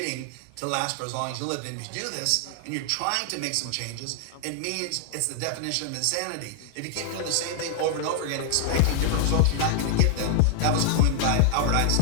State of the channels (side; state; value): both; different; correlation 0.00